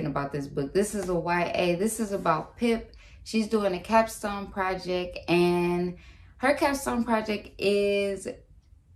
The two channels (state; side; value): identical; both; correlation 1.00